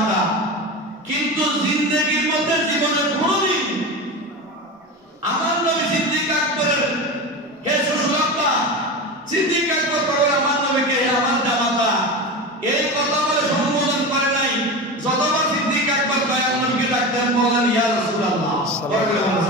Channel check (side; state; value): both; normal; correlation 0.25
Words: কিন্তু জিন্দেগীর মধ্যে জীবনের কোনদিন আমার নবী সিদ্দিক আকবরের হে শ্বশুর আব্বা, সিদ্দিক আকবর বলে আমার নবীকে আমার জামাতা, এই কথা বলে সম্বোধন করে নাই। যতবার সিদ্দিক আকবর দয়াল নবীকে ডাকতেন বলেন, ইয়া রাসূলুল্লাহ।